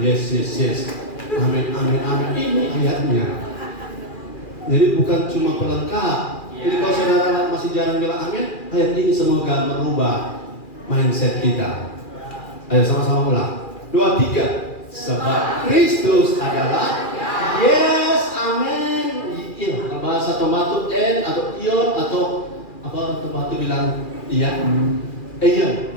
yes, yes, yes, amin, amin, amin. Ini ayatnya. Jadi bukan cuma pelengkap. Jadi kalau saudara masih jarang bilang amin, ayat ini semoga merubah mindset kita. Ayo sama-sama ulang. 2, 3. Sebab Kristus adalah yes, amin. Iya, bahasa tomato n atau ion atau apa tomato bilang iya.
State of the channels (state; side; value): late; right; 2.4 ms